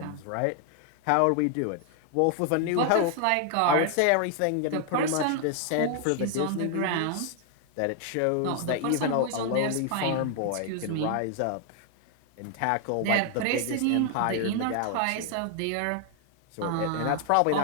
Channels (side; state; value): both; different; correlation 0.00